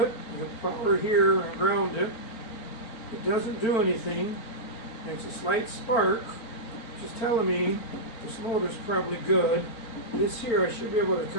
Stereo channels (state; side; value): late; right; 4.4 ms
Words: you have power here and ground it. It doesn't do anything, makes a slight spark, which is telling me this motor's probably good. This here I should be able to